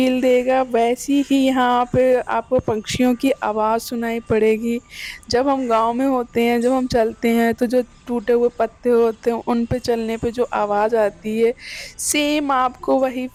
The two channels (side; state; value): both; identical; correlation 1.00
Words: देगा, वैसी ही यहाँ पे आपको पंछियों की आवाज़ सुनाई पड़ेगी। जब हम गाँव में होते हैं, जब हम चलते हैं तो जो टूटे हुए पत्ते होते हैं उन पे चलने पे जो आवाज़ आती है, सेम आपको वही